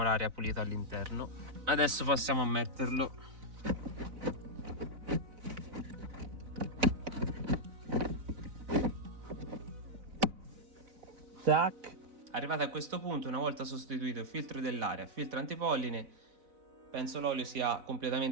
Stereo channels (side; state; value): left; late; 4.0 ms